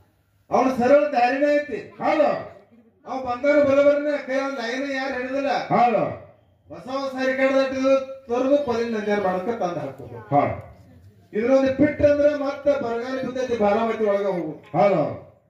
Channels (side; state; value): both; identical; correlation 1.00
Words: ಅವನ ಸರಳ ದಾರಿನೇ ಐತಿ. ಅವ್ ಬಂಗಾರ ಬಲಬರನೆ ಕೈ ಲೈನ್ ಯಾರು ಹಿಡಿದಿಲ್ಲ. ಹೊಸ ರಿಕಾರ್ಡ್ ತೊರೆದು ಕೊಲಿನ ನಂಜಾರ ಮಾಡಕ ತಂದ ಹಾಕೋದು. ಇದ್ರೊಂದು ಪಿಟ್ ಅಂದ್ರೆ ಮತ್ತೆ ಬರಗಾಲ ಬಿದ್ದೈತಿ ಬಾರಾಮತಿ ಒಳಗ ಹೋಗು.